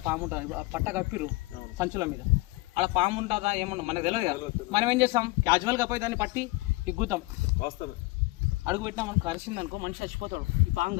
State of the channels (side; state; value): right; quieter; 21.8 dB